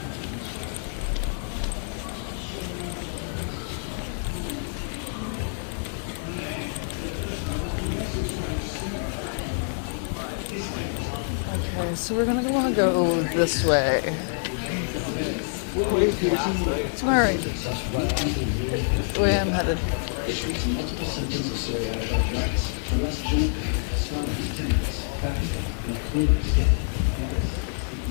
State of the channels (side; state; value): right; silent; 60 dB below the other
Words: Okay, so we're gonna want to go this way. To my right. The way I'm headed.